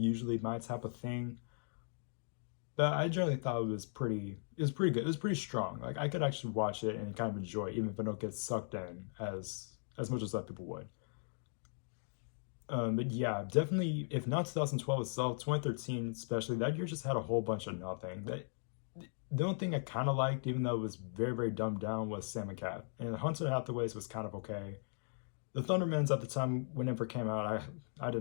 my type of thing, but I generally thought it was pretty good. It was pretty strong. Like I could actually watch it and kind of enjoy it, even if I don't get sucked in as much as other people would. But yeah, definitely. If not 2012 itself, 2013 especially, that year just had a whole bunch of nothing. The only thing I kind of liked, even though it was very very dumbed down, was Sam and Cat. And Hunter Hathaways was kind of okay. The Thundermans at the time, whenever it came out, I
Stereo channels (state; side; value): silent; right; digital silence